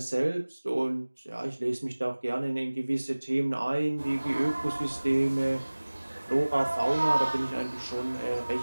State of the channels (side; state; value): both; inverted; correlation -1.00